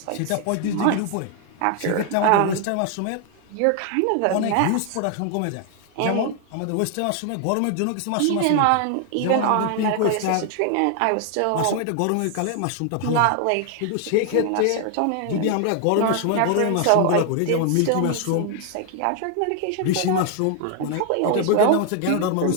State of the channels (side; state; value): both; different; correlation 0.00